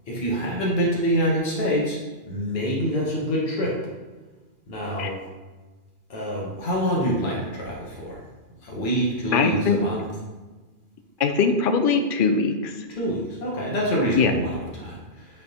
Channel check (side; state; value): left; late; 2.4 ms